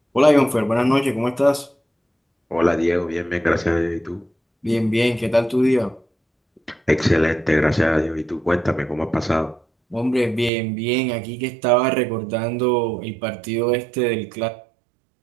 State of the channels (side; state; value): left; drops out; at 10.5 s